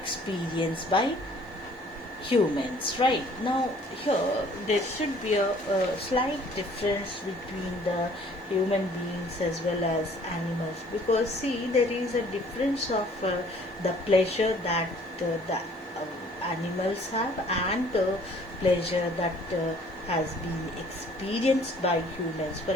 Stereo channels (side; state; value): both; normal; correlation 0.56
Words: by humans. Right now, here there should be a slight difference between the human beings as well as animals, because see, there is a difference of the pleasure that the animals have and the pleasure that has been experienced by humans. For